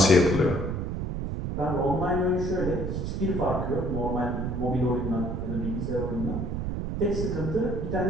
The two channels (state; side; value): noise; right; rumble, 3 dB below the sound